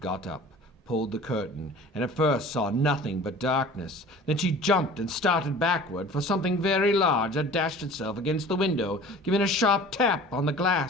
up, pulled the curtain, and at first saw nothing but darkness. Then she jumped and started backward, for something very large had dashed itself against the window, giving a sharp tap on the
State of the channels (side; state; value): both; normal; correlation 0.44